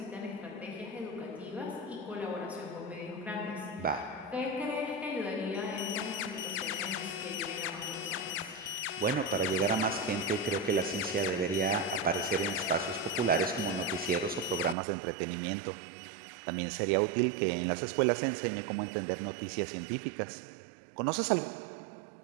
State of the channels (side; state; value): left; drops out; at 14.8 s